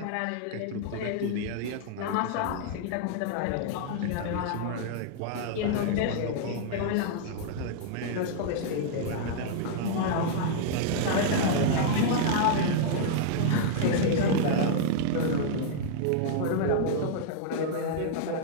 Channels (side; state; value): both; different; correlation -0.01